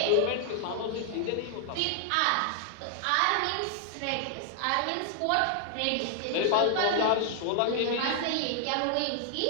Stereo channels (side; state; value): both; different; correlation 0.00